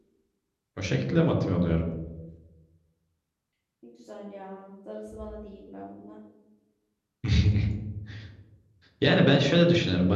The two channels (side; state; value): both; identical; correlation 1.00